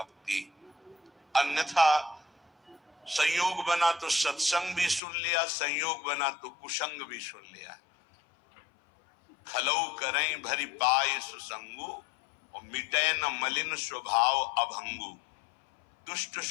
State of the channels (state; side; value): drops out; right; at 5.0 s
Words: अन्यथा संयोग बना तो सत्संग भी सुन लिया, संयोग बना तो कुसंग भी सुन लिया। खलौ करें भरी पाए सुसंगु, और मिटे न मलिन स्वभाव अभंगु। दुष्ट